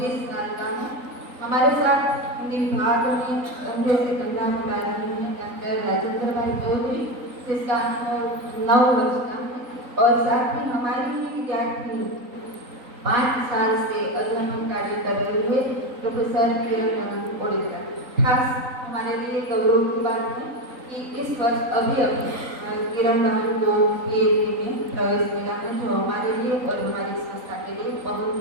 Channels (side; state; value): left; late; 3.9 ms